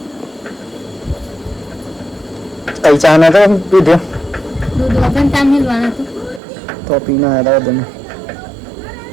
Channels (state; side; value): drops out; left; at 6.4 s